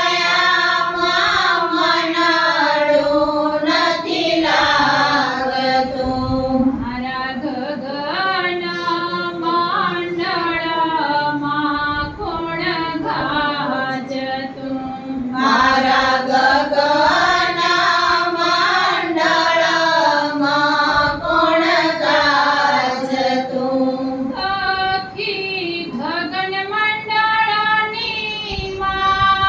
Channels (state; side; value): identical; both; correlation 1.00